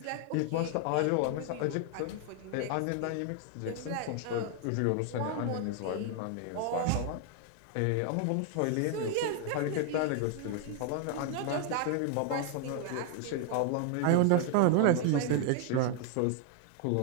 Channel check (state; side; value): different; both; correlation 0.00